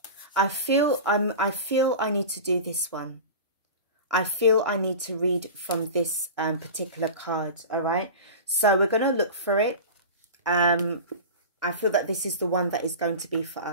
I feel I need to do this one. I feel I need to read from this particular card. All right. So we're going to look for it. I feel that this is the one that is going to be for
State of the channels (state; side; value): inverted; both; correlation -0.31